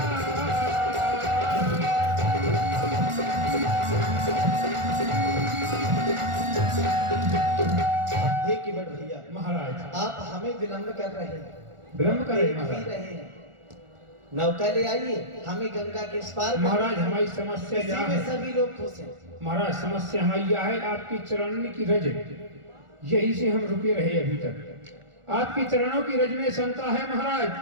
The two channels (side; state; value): left; late; 1.4 ms